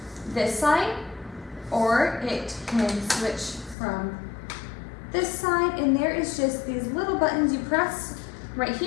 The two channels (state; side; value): drops out; right; at 3.8 s